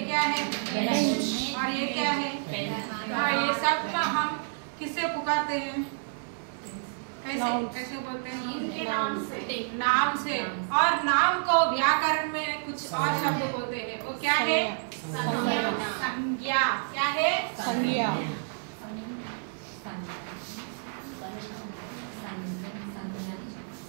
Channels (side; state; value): left; silent; 58 dB below the other